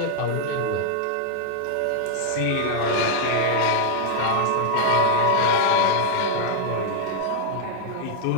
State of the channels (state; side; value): different; both; correlation 0.00